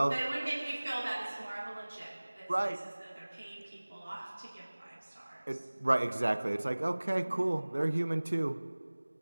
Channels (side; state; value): both; inverted; correlation -1.00